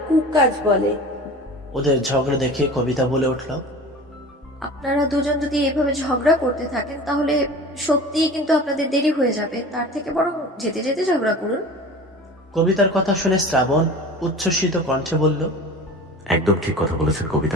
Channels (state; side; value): normal; both; correlation 0.37